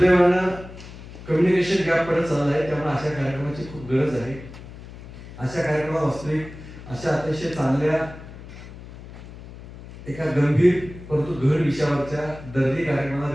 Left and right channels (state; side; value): noise; left; hum, 15 dB below the sound